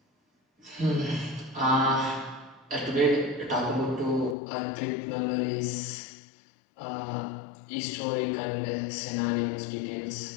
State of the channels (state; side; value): drops out; right; at 4.4 s